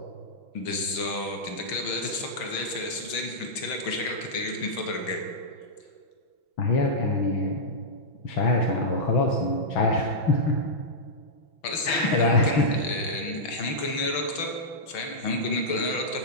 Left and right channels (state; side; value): late; right; 5.9 ms